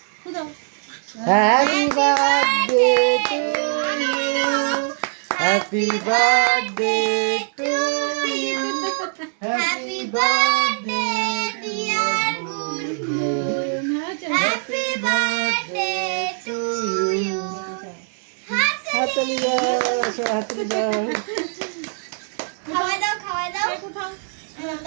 ফুদাও। Happy birthday to you, happy birthday to you, happy birthday dear Gungun, happy birthday to you. হাততালি দাও, হাততালি দাও। খাওয়া দাও, খাওয়া দাও।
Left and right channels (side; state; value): left; silent; 57 dB below the other